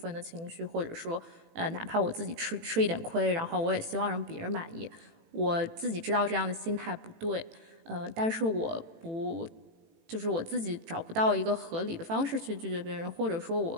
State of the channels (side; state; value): left; late; 18 ms